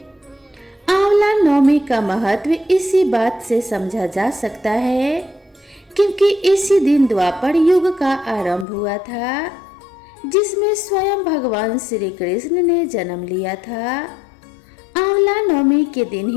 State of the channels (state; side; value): drops out; right; at 8.7 s